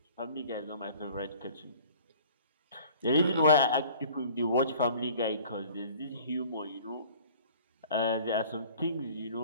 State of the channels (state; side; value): inverted; both; correlation -0.49